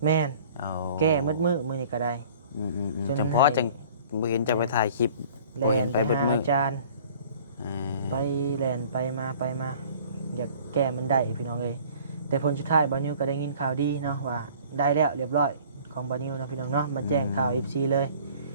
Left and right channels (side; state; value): both; inverted; correlation -0.50